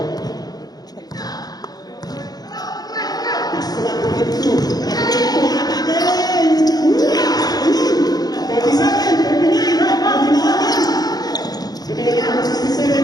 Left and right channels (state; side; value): late; right; 0.19 ms